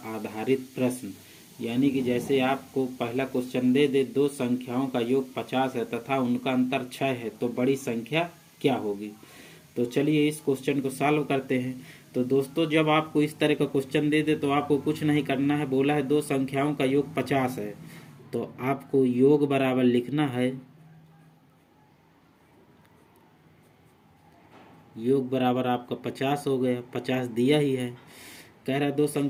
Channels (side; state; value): both; identical; correlation 1.00